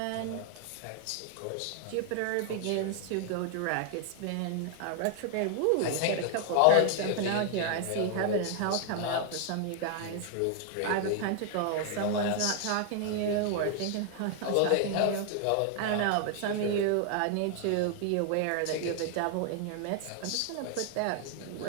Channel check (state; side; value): different; both; correlation 0.00